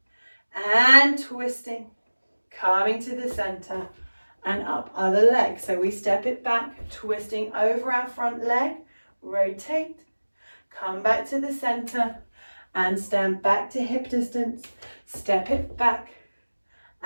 and twisting, coming to the center and up, other leg. So we step it back, twisting over our front leg, rotate, come back to the center and stand back to hip distance, step it back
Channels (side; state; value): both; inverted; correlation -1.00